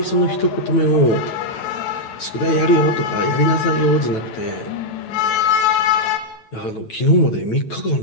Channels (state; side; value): late; right; 9.1 ms